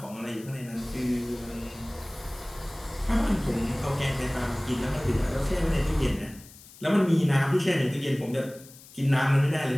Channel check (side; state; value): left; noise; hiss, 21 dB below the sound